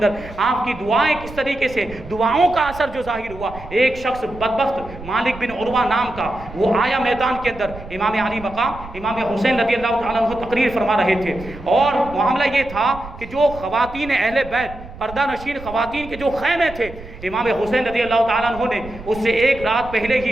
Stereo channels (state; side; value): noise; right; rumble, 15 dB below the sound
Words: آپ کی دعائیں کس طریقے سے، دعاؤں کا اثر جو ظاہر ہوا، ایک شخص بدبخت مالک بن عروہ نام کا وہ آیا میدان کے اندر، امام علی مقام امام حسین رضی اللہ تعالیٰ عنہ تقریر فرما رہے تھے، اور معاملہ یہ تھا کہ جو خواتین اہل بیت پردہ نشین خواتین کے جو خیمے تھے، امام حسین رضی اللہ تعالیٰ عنہ نے اس سے ایک رات پہلے